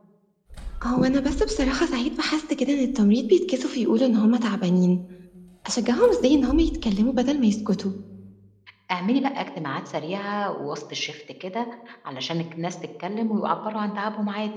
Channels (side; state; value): both; identical; correlation 1.00